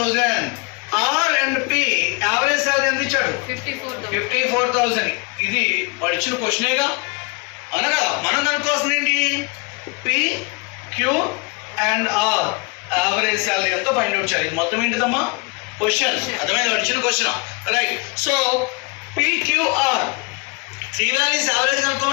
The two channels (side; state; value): right; quieter; 30.2 dB